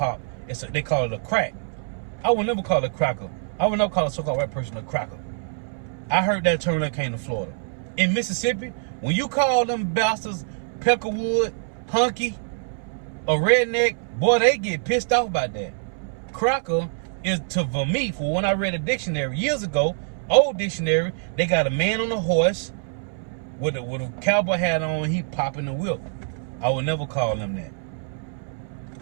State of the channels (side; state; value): left; silent; 62 dB below the other